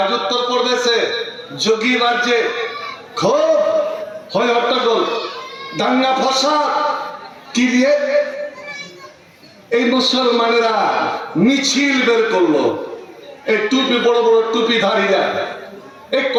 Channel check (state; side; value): identical; both; correlation 1.00